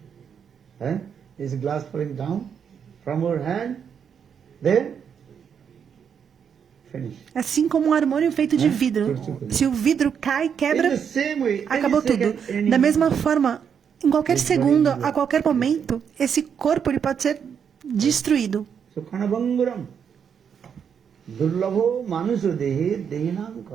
Is glass falling down from our hand, then finish. Assim como um harmônio feito de vidro. Se o vidro cai, quebra, acabou tudo. Da mesma forma, em qualquer segundo, a qualquer momento, esse corpo ele pode ser destruído. So kanabanguram durlabho manusa dehe dehinam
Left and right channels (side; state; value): left; quieter; 7.4 dB